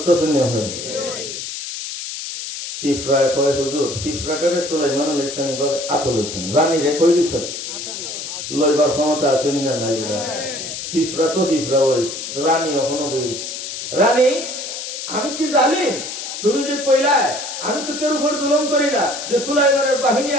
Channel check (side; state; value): left; noise; hiss, 7 dB below the sound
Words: না? ফিফরা কয় হুজুর, ফিফরাটারে সুলাইমান আলাইহিস সালাম ভাবে আতর হইছেন, রানী রে কই দিছেন, লইবার ক্ষমতা আছে না নাই? ফিফরা তো ফিফরা হইছে, রানী এখনো হইছে। রানী আমি কি জালিম? তুমি যে কইলা আমি তো কেউ উপর জুলুম করি না, যে সুলাইমানের বাহিনী